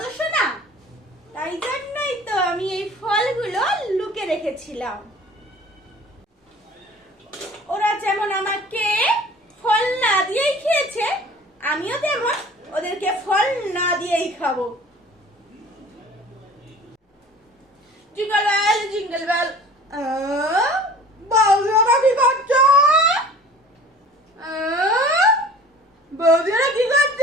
না? তাই জন্যই তো আমি এই ফলগুলো লুকে রেখেছিলাম। ওরা যেমন আমাকে ফল না দিয়েই খেয়েছে, আমিও তেমন ওদেরকে ফল না দিয়েই খাবো। জিঙ্গল বেল জিঙ্গল বেল, বৌদিরা কি করছে? বৌদিরা কি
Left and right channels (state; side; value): normal; both; correlation 0.45